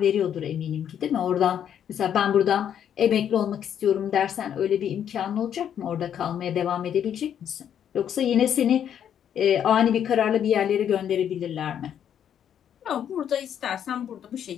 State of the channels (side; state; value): right; quieter; 9.3 dB